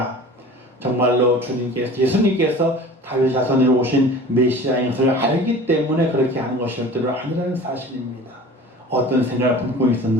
정말로 예수님께서 다윗 자손으로 오신 메시아인 것을 알기 때문에 그렇게 하는 것이었던 아니라는 사실입니다. 어떤 생각을 품고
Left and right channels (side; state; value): both; normal; correlation 0.41